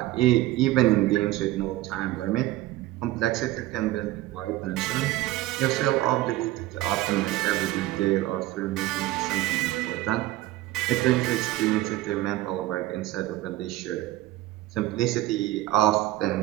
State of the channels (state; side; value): quieter; left; 16.4 dB